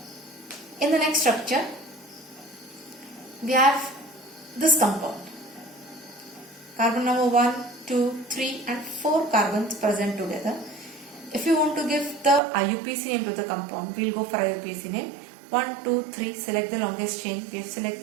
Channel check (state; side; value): drops out; left; at 12.4 s